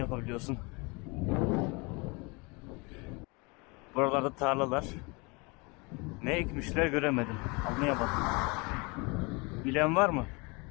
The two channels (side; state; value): right; quieter; 28.5 dB